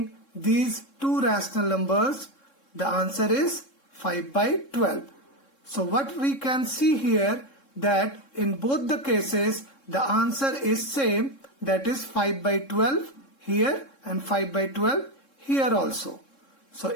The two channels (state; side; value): late; right; 3.7 ms